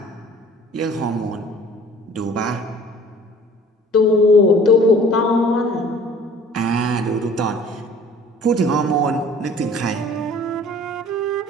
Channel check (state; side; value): normal; both; correlation 0.49